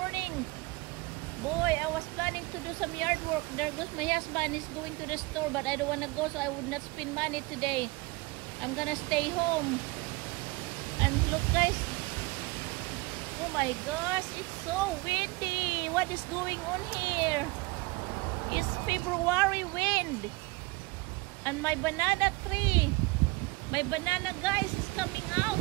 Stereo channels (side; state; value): left; quieter; 24.2 dB